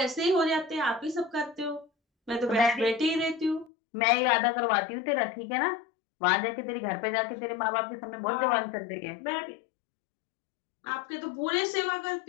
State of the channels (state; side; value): drops out; right; at 3.7 s